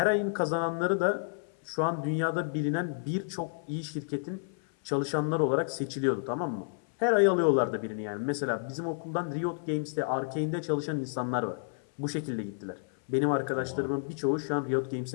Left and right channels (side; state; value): right; silent; 58 dB below the other